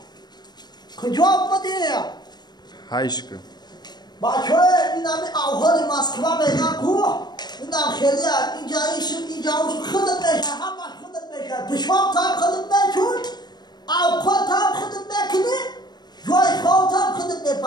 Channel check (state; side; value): late; right; 0.20 ms